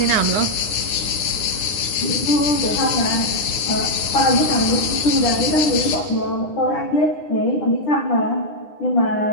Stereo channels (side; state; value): right; late; 9.9 ms